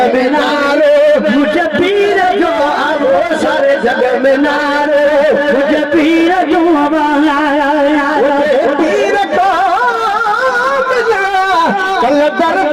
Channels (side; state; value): both; identical; correlation 1.00